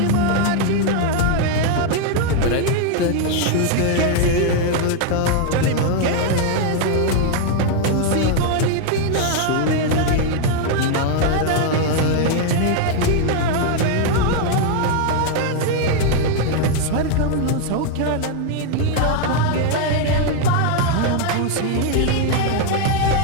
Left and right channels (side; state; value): both; different; correlation 0.00